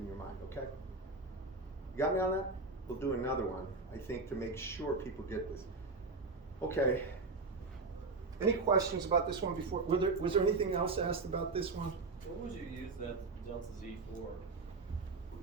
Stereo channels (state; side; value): quieter; left; 3.8 dB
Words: your mind, okay? You got me on that? We'll do another one, I think, to make sure people get this. Okay. Any questions about this one before? Was there anything else asked about this one? What would you use that delta Z for?